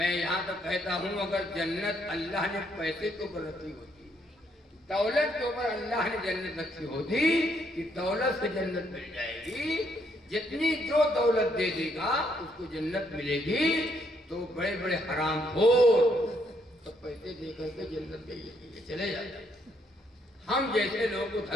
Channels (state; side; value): normal; both; correlation 0.72